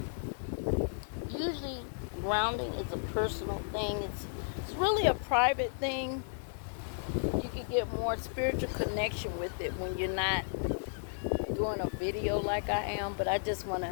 Usually, grounding is a personal thing. It's really a private thing. You can get more spiritual connection with it when you're not doing a video like I am. But I just want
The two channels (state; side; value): silent; right; digital silence